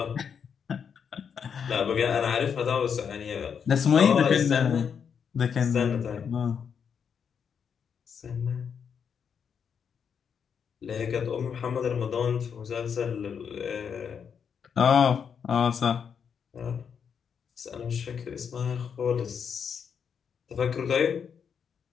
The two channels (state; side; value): quieter; right; 7.1 dB